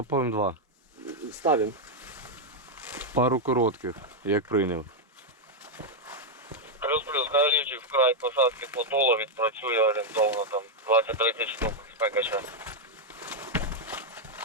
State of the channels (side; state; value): both; normal; correlation 0.00